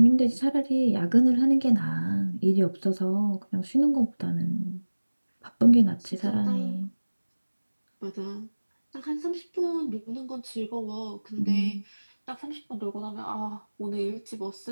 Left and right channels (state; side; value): inverted; both; correlation -1.00